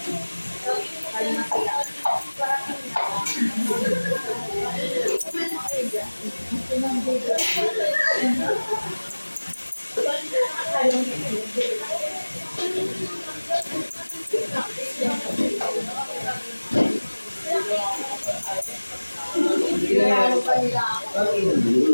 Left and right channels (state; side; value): inverted; both; correlation -1.00